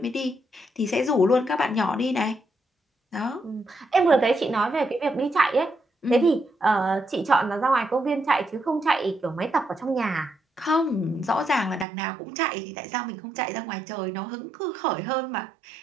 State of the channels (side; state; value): left; drops out; at 11.9 s